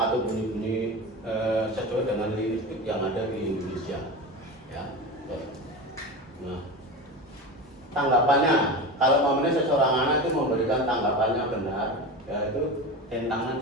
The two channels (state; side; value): normal; both; correlation 0.26